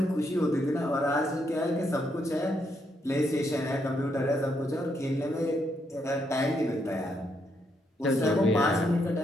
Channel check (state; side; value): normal; both; correlation 0.77